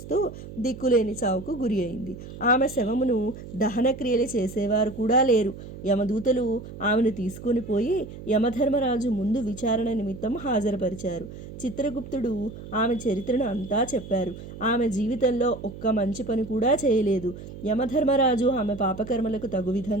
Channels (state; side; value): noise; right; hum, 13 dB below the sound